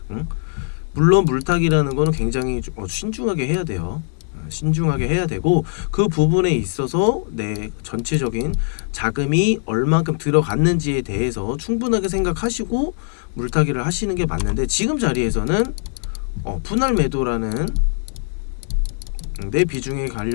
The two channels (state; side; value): silent; right; 65 dB below the other